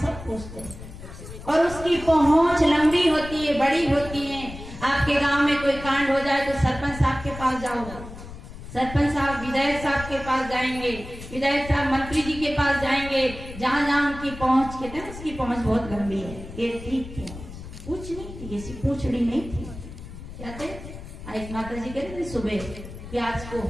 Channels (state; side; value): noise; left; rumble, 13 dB below the sound